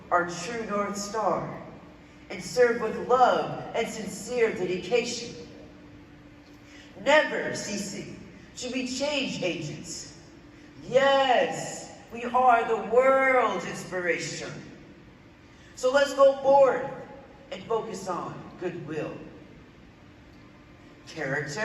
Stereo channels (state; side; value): identical; both; correlation 1.00